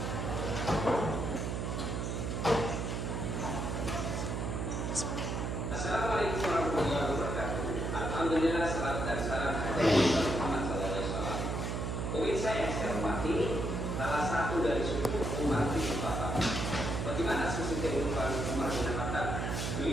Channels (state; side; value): noise; right; hum, 2 dB below the sound